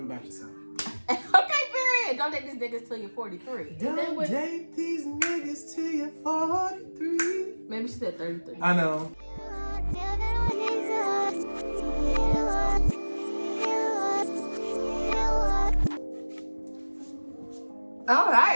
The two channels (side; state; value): both; inverted; correlation -1.00